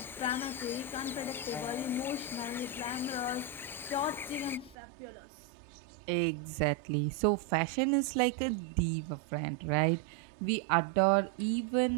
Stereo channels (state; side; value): drops out; left; at 4.8 s